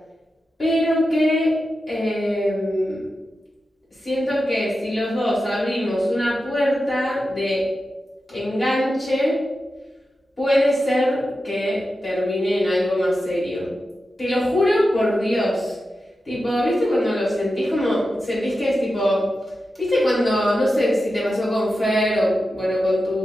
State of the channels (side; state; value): both; normal; correlation 0.91